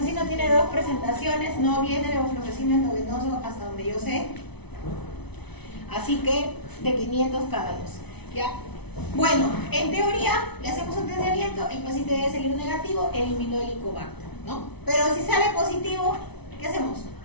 tiene dos presentaciones, no viene levofloxacino endovenoso hasta donde yo sé. Así que de 500 cada dos, ¿ya? Bueno, en teoría, le hacemos un test de aliento, el paciente debe salir negativo, eliminó el Helicobacter, ¿no? Pero si sale positivo, ¿qué hacemos?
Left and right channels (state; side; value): late; right; 0.99 ms